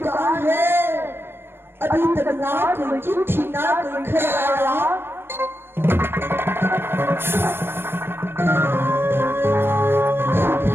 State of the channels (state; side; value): late; left; 0.11 ms